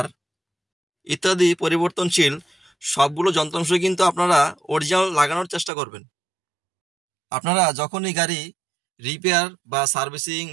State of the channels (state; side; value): drops out; left; at 5.7 s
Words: ইত্যাদি পরিবর্তনশীল সবগুলো যন্ত্রাংশ কিন্তু আপনারা অরিজিনাল লাগানোর চেষ্টা করবেন। আপনারা যখনই গাড়ি রিপেয়ার বা সার্ভিসিং